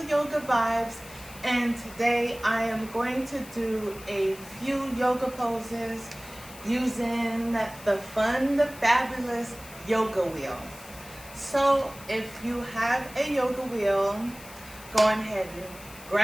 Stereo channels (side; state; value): left; noise; hiss, 18 dB below the sound